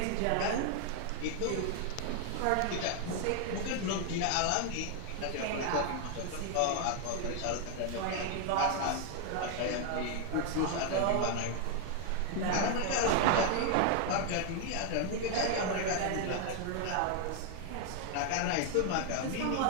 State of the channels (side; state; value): both; different; correlation 0.00